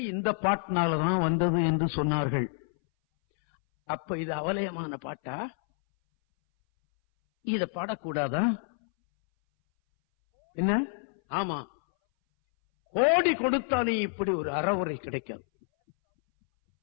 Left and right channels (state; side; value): silent; right; 59 dB below the other